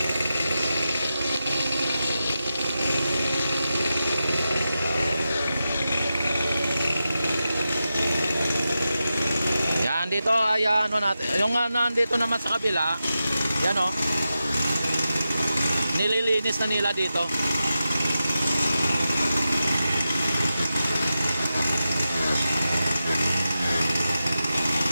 Dito ay natin, yung nandito naman sa kabila, yan nililinis na nila dito.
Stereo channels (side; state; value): both; inverted; correlation -0.91